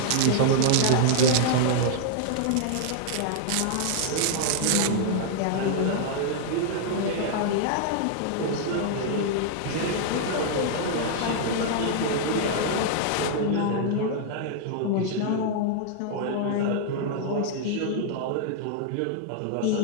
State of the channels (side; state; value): both; different; correlation -0.01